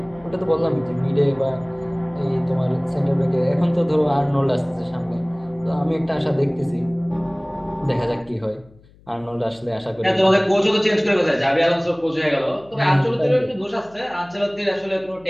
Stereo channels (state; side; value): noise; left; hum, 27 dB below the sound